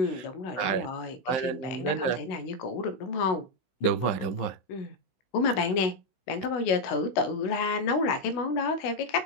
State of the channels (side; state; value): right; late; 15 ms